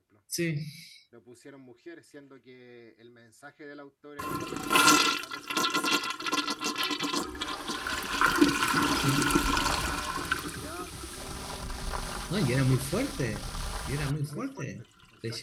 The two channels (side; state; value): both; identical; correlation 1.00